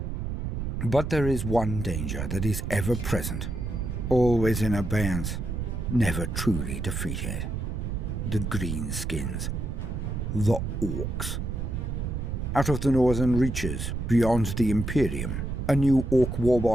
But there is one danger that is ever present, always in abeyance, never truly defeated. The greenskins. The Orks. Out of the northern reaches, beyond the Imperium, a new Ork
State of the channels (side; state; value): right; noise; rumble, 3 dB below the sound